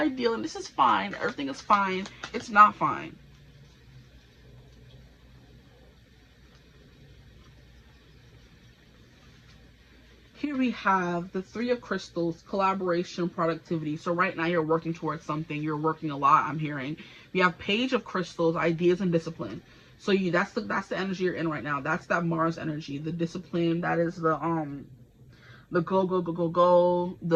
and this is fine. Everything is fine. It's not fine. Here we have the Three of Crystals, collaboration, productivity. So right now you're working towards something. You're working a lot, I'm hearing. We have Page of Crystals, ideas and discipline. So that's the energy you're in right now. That's that Mars energy. The discipline, that is the go,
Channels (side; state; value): both; identical; correlation 1.00